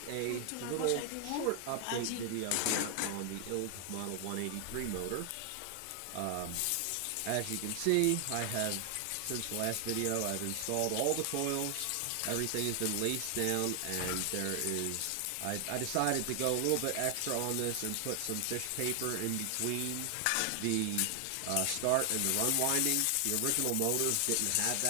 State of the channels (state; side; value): different; both; correlation 0.00